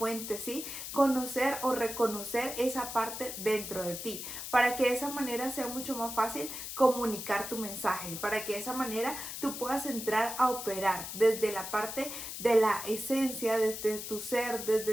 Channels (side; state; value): left; noise; hiss, 7 dB below the sound